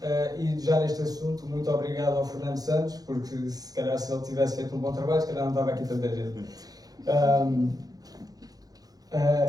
E já neste assunto, muito obrigado ao Fernando Santos, porque se calhar se ele tivesse feito um bom trabalho, se calhar não estava aqui tanta gente.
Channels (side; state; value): left; late; 0.18 ms